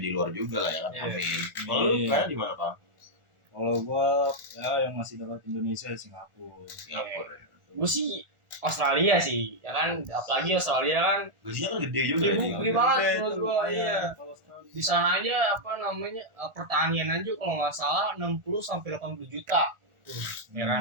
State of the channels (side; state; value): left; late; 1.4 ms